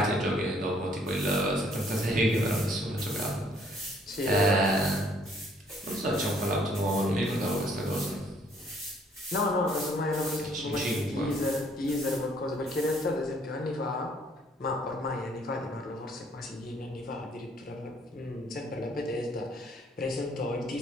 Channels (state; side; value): normal; both; correlation 0.63